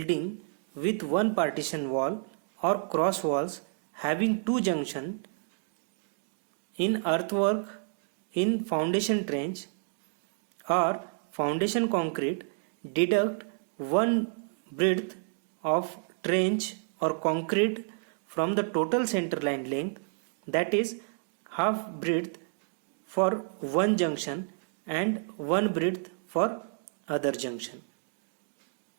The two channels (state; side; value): silent; left; digital silence